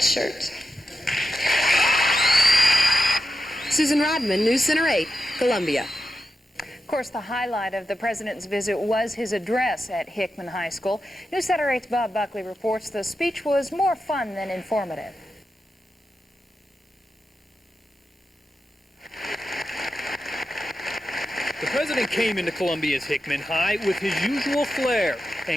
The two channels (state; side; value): normal; both; correlation 0.89